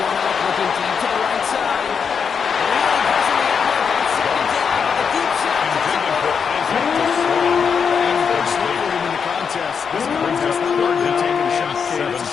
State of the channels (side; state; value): right; quieter; 6.4 dB